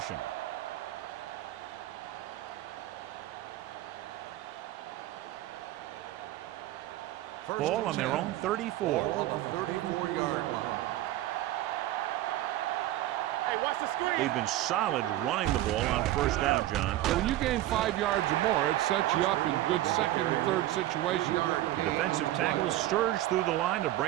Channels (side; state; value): left; quieter; 15.1 dB